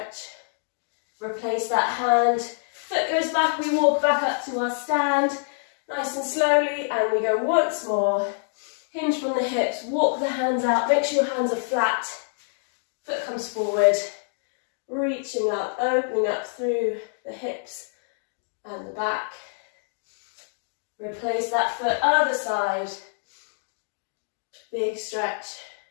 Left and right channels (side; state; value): right; silent; digital silence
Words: Replace that hand. Foot goes back, we walk back up to our stand. Nice and slowly, and we go once more. Hinge from the hips, walk the hands out, make sure your hands are flat. Foot comes forward, reaching up, opening up through the hips and the back. Replace that foot, other side. Big stretch.